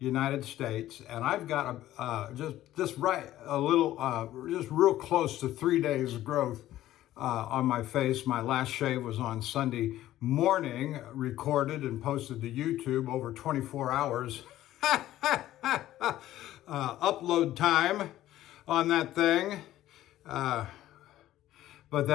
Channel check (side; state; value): right; quieter; 14.0 dB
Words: States, and I've got just real close to 3 days growth on my face. My last shave was on Sunday morning, recorded and posted to YouTube over 24 hours. Upload time on that thing. But